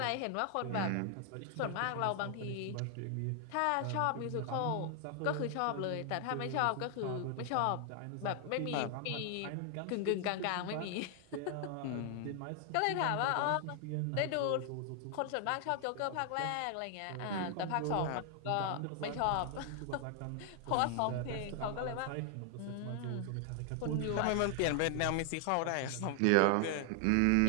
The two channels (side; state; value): both; different; correlation 0.00